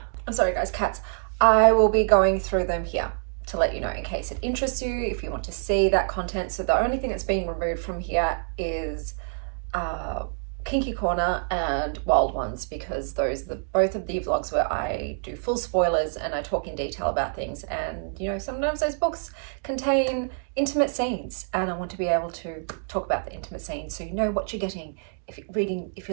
I'm sorry guys, cats. I will be going through them here to let you know in case it interests you, if you want to see that content. So the only thing that's being removed from here is Kinky Corner and Wild Ones, because those are both of the vlogs where I do full spoilers and I talk in detail about things. And sometimes those books contain intimate scenes and I want to be able to talk about the intimate scenes so you know what you're getting if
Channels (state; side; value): silent; left; digital silence